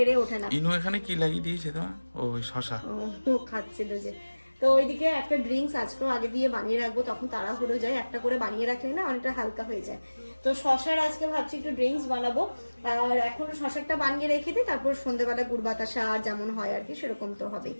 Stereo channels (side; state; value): both; inverted; correlation -1.00